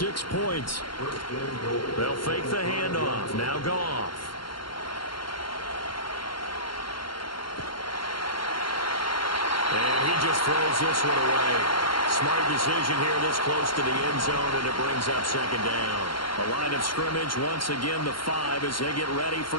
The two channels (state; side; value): late; right; 0.72 ms